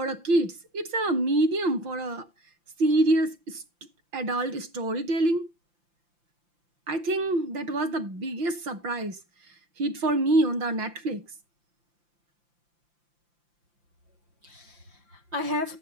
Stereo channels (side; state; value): left; late; 5.8 ms